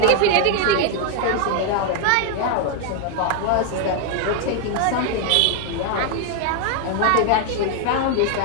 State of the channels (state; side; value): different; both; correlation 0.01